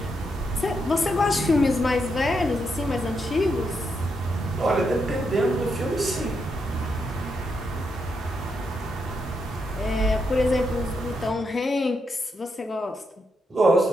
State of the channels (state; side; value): normal; both; correlation 0.81